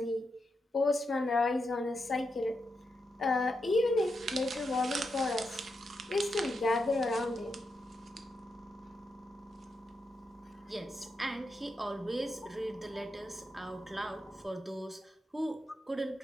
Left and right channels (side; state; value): both; normal; correlation 0.85